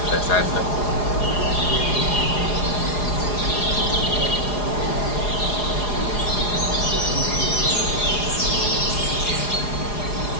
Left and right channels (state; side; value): late; right; 4.8 ms